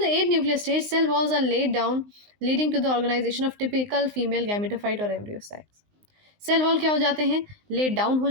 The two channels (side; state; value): left; late; 19 ms